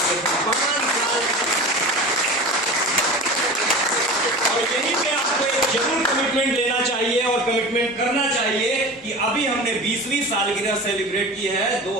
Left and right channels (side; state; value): both; normal; correlation 0.33